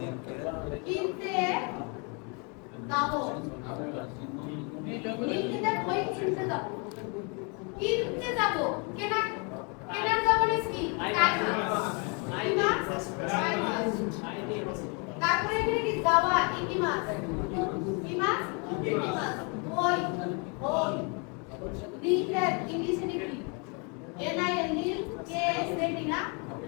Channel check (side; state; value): right; quieter; 34.2 dB